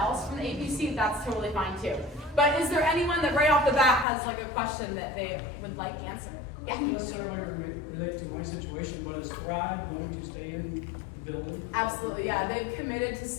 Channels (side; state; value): right; drops out; at 4.0 s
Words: from the APC, that's totally fine too. But is there anyone that right off the bat has like a question that they would like answered? Yeah. Not necessarily related to my situation, but is Thrive going to stay in the building? Absolutely, yeah. They've committed to